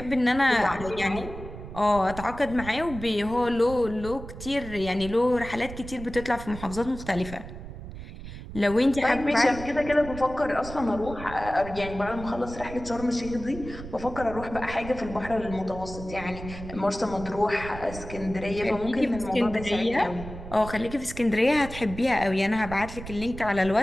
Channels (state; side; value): noise; right; rumble, 12 dB below the sound